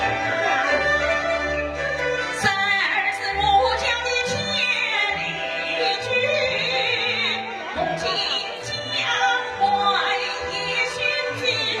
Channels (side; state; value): both; identical; correlation 1.00